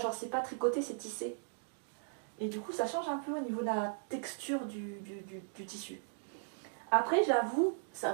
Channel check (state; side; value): silent; left; digital silence